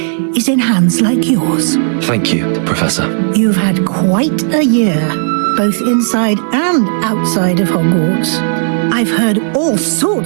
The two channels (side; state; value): left; silent; 67 dB below the other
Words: is in hands like yours. Thank you, Professor. You've had quite a year, both inside and outside of Hogwarts. I've heard all